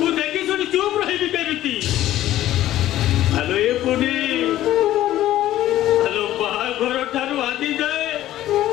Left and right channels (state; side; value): quieter; right; 13.8 dB